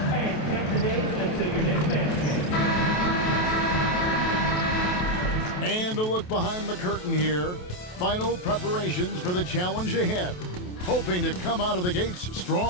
and count the days until your next Mavs game. And a look behind the curtain here. Final preparations for the challenge ahead. Hoping to come out of the gates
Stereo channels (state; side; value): late; right; 28 ms